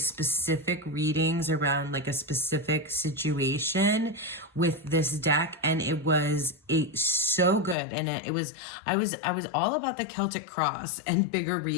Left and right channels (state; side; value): drops out; right; at 7.8 s